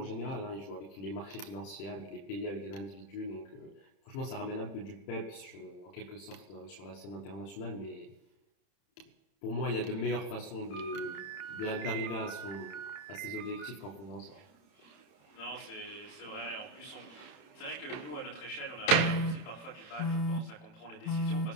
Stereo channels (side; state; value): right; late; 30 ms